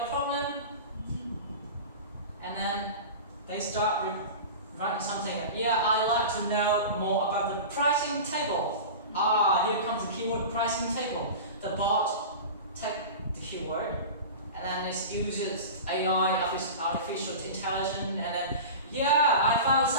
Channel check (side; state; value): both; inverted; correlation -0.31